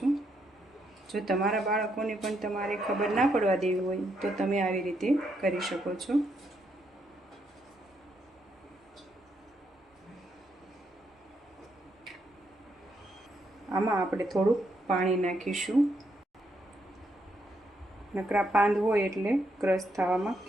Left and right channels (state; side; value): normal; both; correlation 0.77